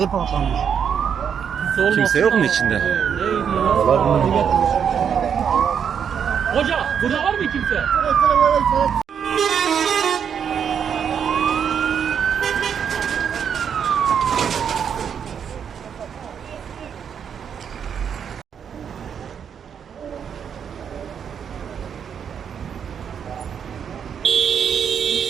patlamış. Kimse yok mu içinde? Hoca burada var mı kimse?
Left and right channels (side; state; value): left; quieter; 7.7 dB